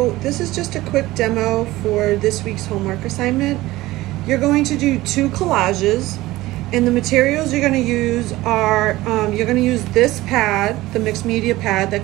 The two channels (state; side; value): quieter; left; 17.9 dB